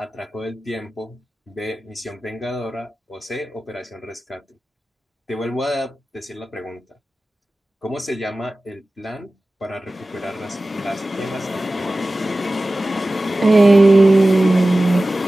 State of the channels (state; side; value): normal; both; correlation 0.96